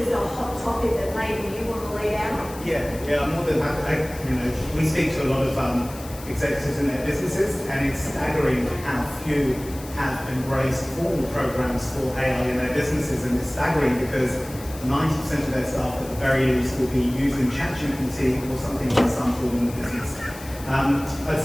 a hot topic that maybe you want to lead out on. Yeah, I'm more than happy. We speak to a lot of executives in their businesses, and it's staggering how few have embraced formal programs for AI in their businesses, and it's staggering because 90% of their staff at the very least will be using ChatGPT or something in some form in the business. I'd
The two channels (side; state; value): left; noise; hiss, 17 dB below the sound